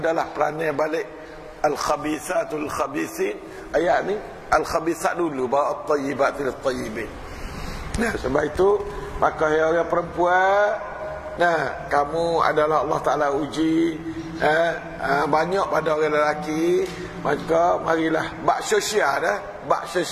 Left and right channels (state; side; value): identical; both; correlation 1.00